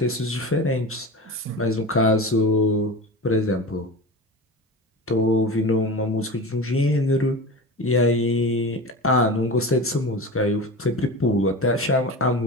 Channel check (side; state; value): both; normal; correlation 0.30